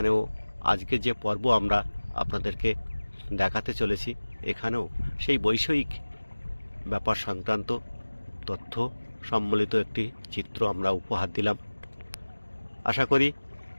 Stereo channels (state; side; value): inverted; both; correlation -1.00